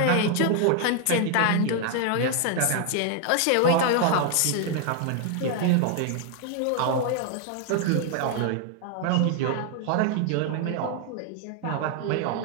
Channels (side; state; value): both; different; correlation 0.00